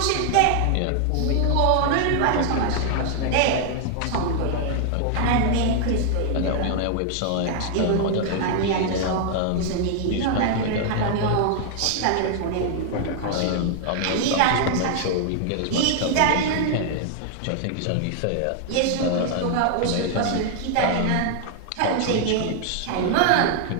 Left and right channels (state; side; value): different; both; correlation 0.00